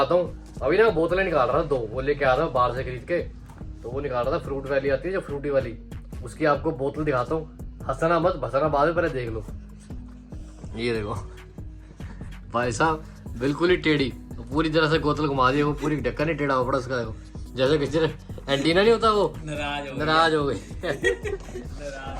हूँ, अभी ना बोतलें निकाल रहा था 2, वो लेके आया था बाहर से खरीद के, तो वो निकाल रहा था। फ्रूट वाली आती है जो फ्रूटी वाली, उसकी आपको बोतल दिखाता हूँ, हंसना मत भसना बाद में, पहले देख लो। ये देखो भाई साहब, बिल्कुल ही टेढ़ी, पूरी तरह से बोतल घुमा दी, वो पूरी ढक्कन ही टेढ़ा हो पड़ा उसका, देखो जैसे किसी एंटीना नहीं होता, वो नाराज हो गई।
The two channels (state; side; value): identical; both; correlation 1.00